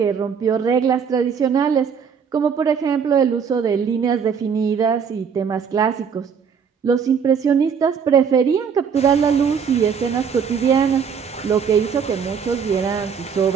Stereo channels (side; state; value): left; quieter; 6.8 dB